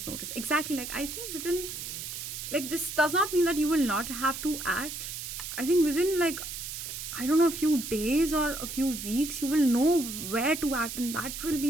notice. Exactly. Like, I think within, like, this does not mean that you will not have to act. I think within, like, I don't know, a few days or a few weeks, you will know where to act, and that will be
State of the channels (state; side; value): noise; right; hiss, 7 dB below the sound